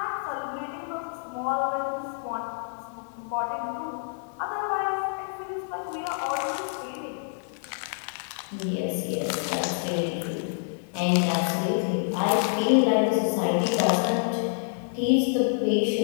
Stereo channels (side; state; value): right; silent; digital silence